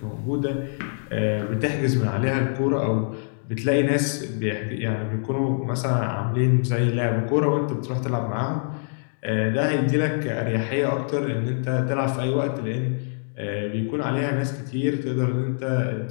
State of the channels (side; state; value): right; silent; digital silence